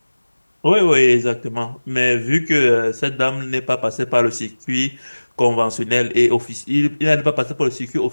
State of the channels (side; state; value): both; inverted; correlation -1.00